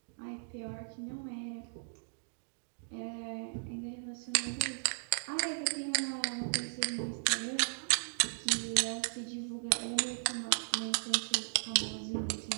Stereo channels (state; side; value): silent; left; digital silence